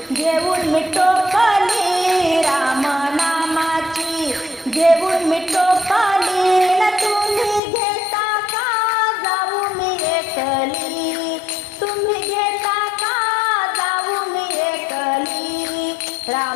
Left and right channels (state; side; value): drops out; right; at 7.6 s